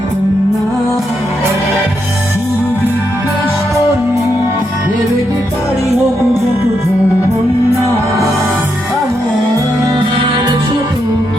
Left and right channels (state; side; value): normal; both; correlation 0.81